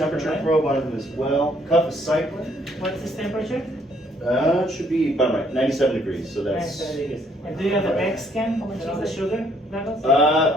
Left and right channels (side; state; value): both; normal; correlation 0.66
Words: temperature right. probe on him as well. Cuff is cycling. What's his temperature? It should be about right, 97 degrees. So that's. 97 degrees. And do you have a back scan and all the sugar levels?